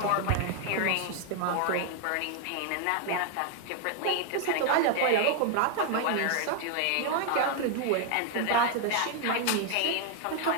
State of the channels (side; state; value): both; different; correlation 0.00